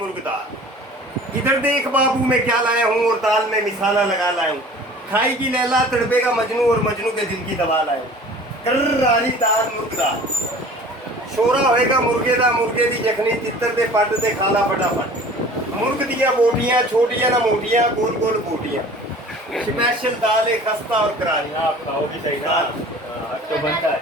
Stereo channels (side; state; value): both; normal; correlation 0.45